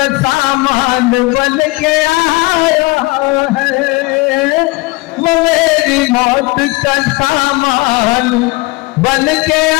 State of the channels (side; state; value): right; quieter; 22.9 dB